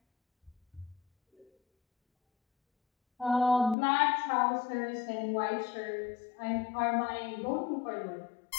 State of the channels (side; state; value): right; drops out; at 3.8 s